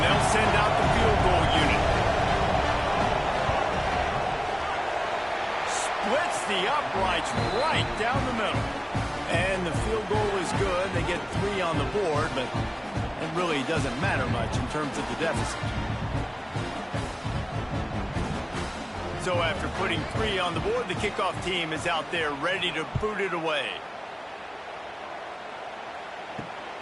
they'll send out the field goal unit. Splits the uprights right down the middle. And the field goal is good. They get 3 on the board, but it really doesn't matter much in terms of the deficit. So after putting 3 on the board, the kickoff team is out there ready to boot it away.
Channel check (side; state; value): both; identical; correlation 1.00